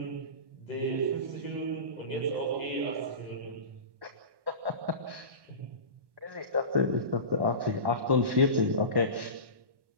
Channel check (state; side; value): late; left; 1.1 ms